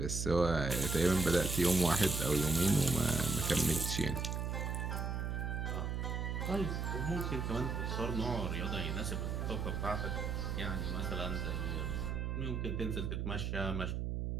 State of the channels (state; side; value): noise; right; hum, 1 dB below the sound